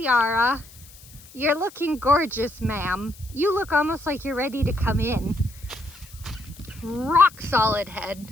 You're looking gorgeous, ma'am. You look almost like you're ready to come in. Rock solid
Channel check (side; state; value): left; noise; hiss, 22 dB below the sound